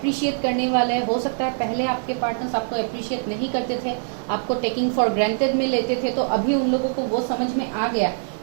करने वाले हैं। हो सकता है पहले आपके पार्टनर्स आपको अप्रिशिएट नहीं करते थे, आपको टेकिंग फॉर ग्रांटेड में लेते थे, तो अभी उन लोगों को वो समझ में आ गया,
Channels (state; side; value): silent; left; digital silence